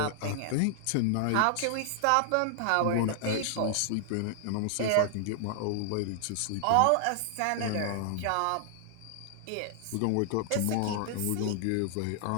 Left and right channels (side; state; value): both; different; correlation -0.01